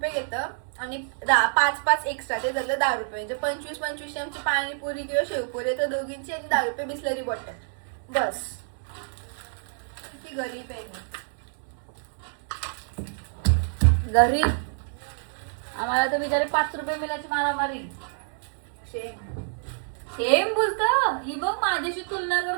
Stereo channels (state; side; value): silent; left; 60 dB below the other